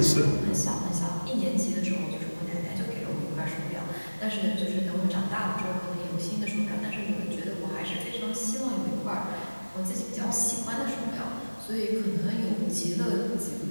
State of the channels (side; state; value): both; inverted; correlation -1.00